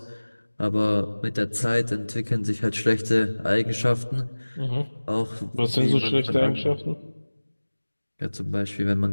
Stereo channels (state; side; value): inverted; both; correlation -1.00